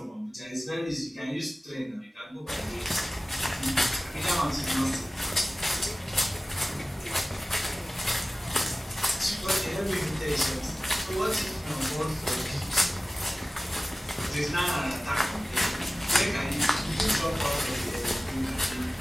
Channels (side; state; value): both; normal; correlation 0.97